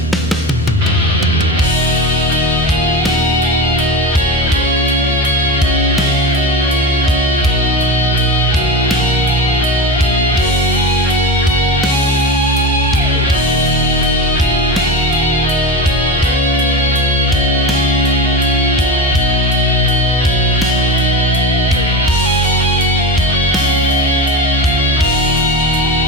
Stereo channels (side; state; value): both; normal; correlation 0.24